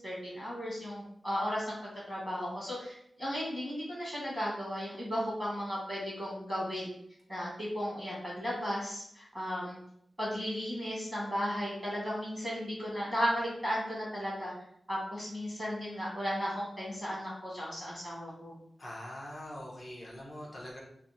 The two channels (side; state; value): both; normal; correlation 0.93